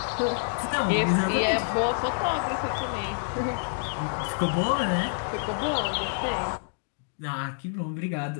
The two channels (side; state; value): right; silent; digital silence